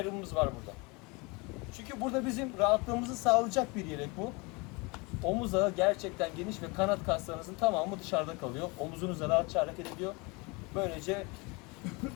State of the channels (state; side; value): quieter; right; 27.6 dB